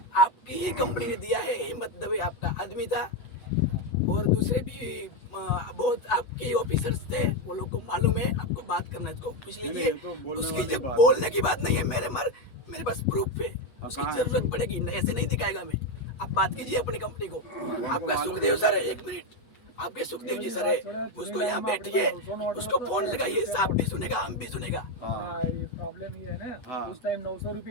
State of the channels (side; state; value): right; late; 8.1 ms